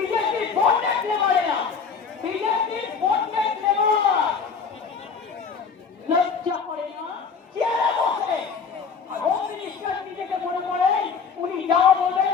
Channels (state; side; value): quieter; right; 5.8 dB